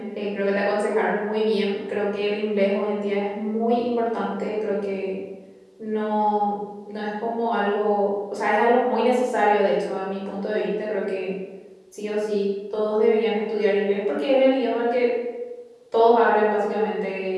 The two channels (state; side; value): identical; both; correlation 1.00